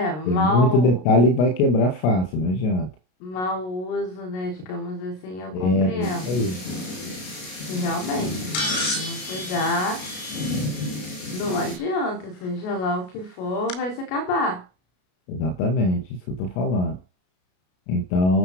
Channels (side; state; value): right; late; 33 ms